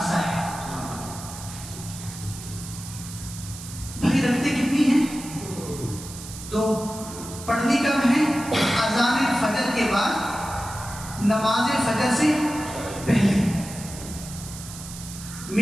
ہے۔ تو پڑھنی کب ہے؟ اذان فجر کے بعد، نماز فجر سے پہلے۔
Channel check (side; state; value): right; noise; hiss, 13 dB below the sound